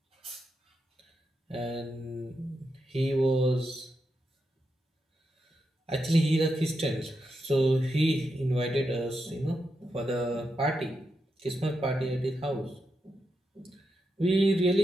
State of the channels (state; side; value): normal; both; correlation 0.85